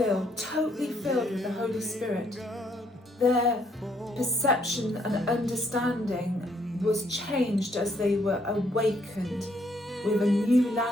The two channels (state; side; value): normal; both; correlation 0.70